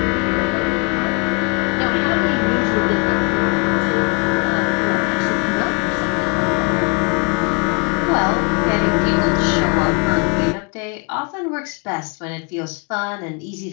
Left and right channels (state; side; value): quieter; right; 31.4 dB